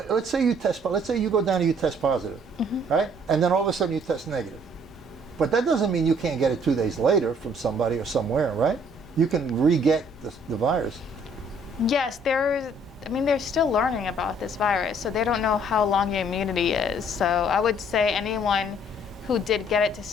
let's say you test, let's say you go down and you test positive, right? And then all of a sudden you test negative. But that doesn't mean you can't get it 2 days later from somebody or somewhere, right? You can re-get the virus. Yes, they're still learning about this virus, so they don't know how long your immunity is. So I would say anyone who did get it to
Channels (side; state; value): both; normal; correlation 0.61